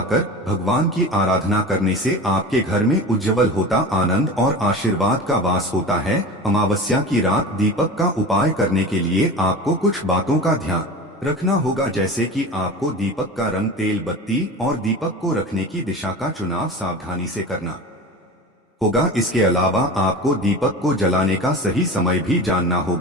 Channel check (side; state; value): both; normal; correlation 0.32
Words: भगवान की आराधना करने से आपके घर में उज्जवल होता आनंद और आशीर्वाद का वास होता है। अमावस्या की रात दीपक का उपाय करने के लिए आपको कुछ बातों का ध्यान रखना होगा, जैसे कि आपको दीपक का रंग, तेल बत्ती और दीपक को रखने की दिशा का चुनाव सावधानी से करना होगा। इसके अलावा आपको दीपक को जलाने का सही समय भी जानना